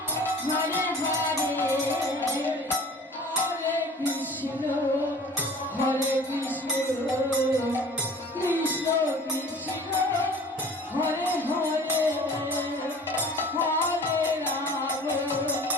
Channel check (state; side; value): normal; both; correlation 0.45